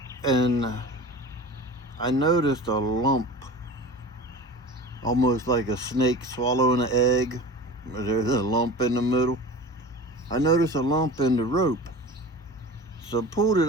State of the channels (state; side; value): normal; both; correlation 0.35